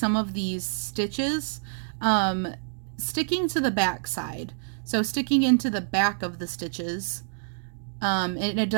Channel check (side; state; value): left; silent; digital silence